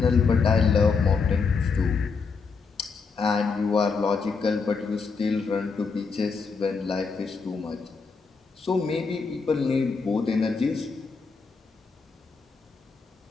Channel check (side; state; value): right; quieter; 4.9 dB